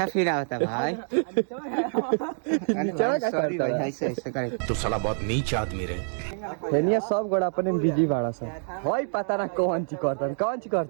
फील होता भाई। नीचा का सॉरी करता भाई, है? ऐसे करे। तू साला बहुत नीच आदमी रे। हेनिया सब गोड़ा अपने में बिजी बाड़ा सा। होई पता ना कौन ची करता, कौन ची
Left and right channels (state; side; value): silent; left; digital silence